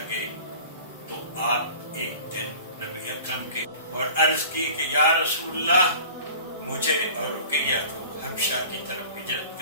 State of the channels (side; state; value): both; inverted; correlation -0.43